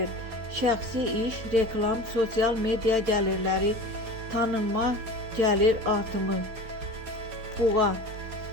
Şəxsi iş, reklam, sosial media gəlirləri, tanınma, gəlir artımı. Buğa,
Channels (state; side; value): late; left; 4.4 ms